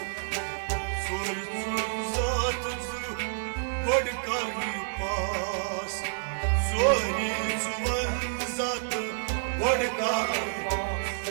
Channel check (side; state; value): left; silent; digital silence